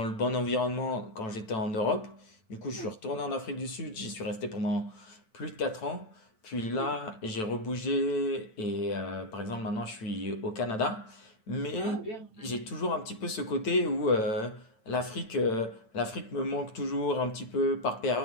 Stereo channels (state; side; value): late; right; 9.1 ms